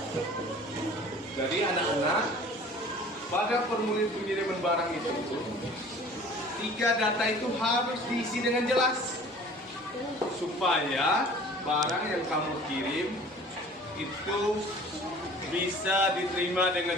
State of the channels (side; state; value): both; normal; correlation 0.47